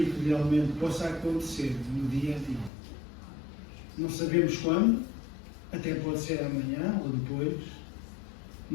que realmente possa acontecer no dia a dia. Não sabemos quando, até pode ser amanhã ou depois,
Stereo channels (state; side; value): drops out; right; at 2.7 s